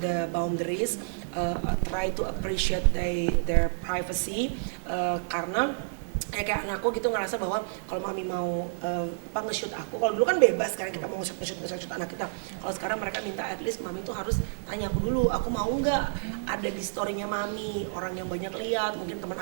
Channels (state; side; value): silent; left; digital silence